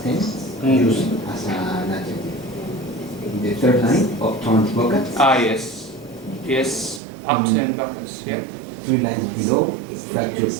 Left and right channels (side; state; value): left; drops out; at 7.0 s